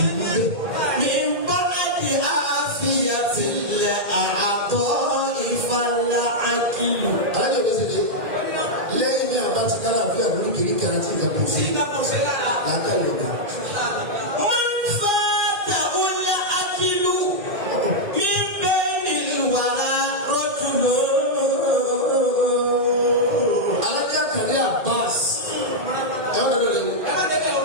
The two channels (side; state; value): left; late; 2.4 ms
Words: ní bẹ́ẹ̀. mi bá di àfihàn ilẹ̀ àtọ́ ìfàlà àkìlù. alájọ bí sèé lẹ́yìn bí àbá ti dára fún ẹ̀rọ kiri kẹrẹ àti ìjà kò sí. sí ká kò sí lára. láńkà yorùbá. wọ́n fa tàwọlá àkìlù mi bẹ́ẹ̀ ni wàrà rọ́jùmọ́. alájà kàlẹ́ Abbas ẹ wọ́n lọ lẹ́nu. ẹ má débẹ̀ o.